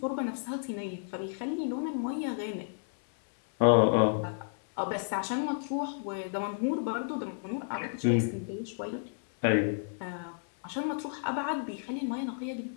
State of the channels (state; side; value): silent; right; 57 dB below the other